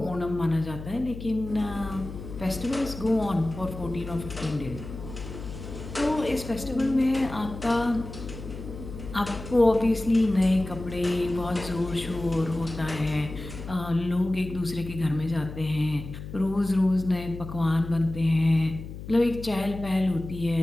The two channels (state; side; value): noise; left; hum, 11 dB below the sound